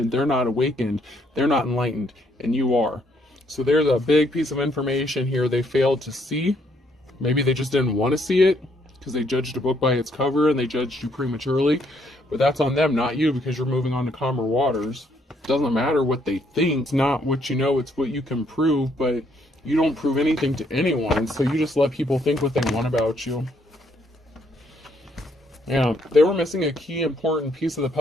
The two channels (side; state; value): both; normal; correlation 0.70